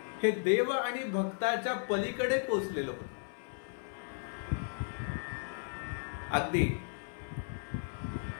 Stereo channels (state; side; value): silent; right; 54 dB below the other